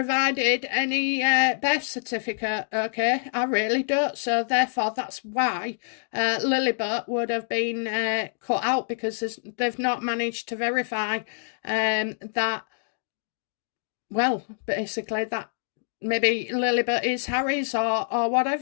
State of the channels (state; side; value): silent; right; digital silence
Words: any birth certificate, okay? I really don't. So therefore, that's why Lilibet would have been cut out, because they've not managed to verify that, well, basically that maybe Lilibet is Harry's or